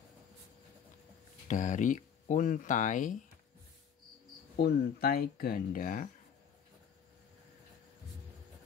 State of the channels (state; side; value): quieter; right; 7.7 dB